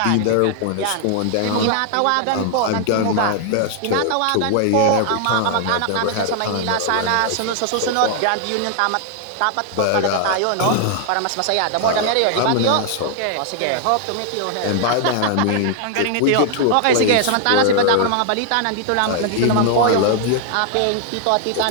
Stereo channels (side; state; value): both; different; correlation 0.00